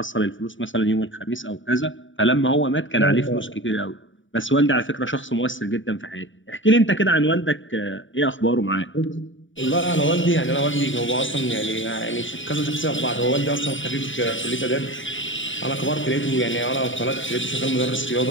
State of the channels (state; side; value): late; right; 0.56 ms